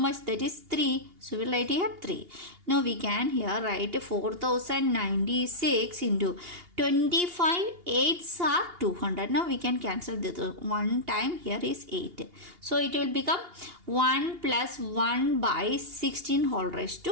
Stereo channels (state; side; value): late; left; 2.8 ms